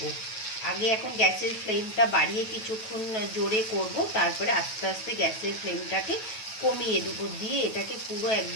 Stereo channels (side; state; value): right; late; 9.2 ms